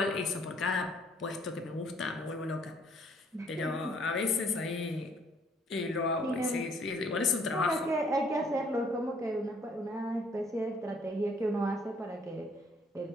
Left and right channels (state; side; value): normal; both; correlation 0.62